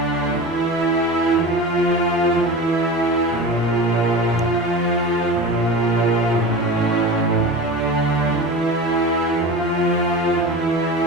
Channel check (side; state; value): both; normal; correlation 0.31